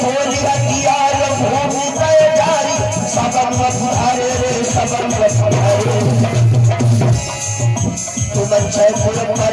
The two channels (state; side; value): identical; both; correlation 1.00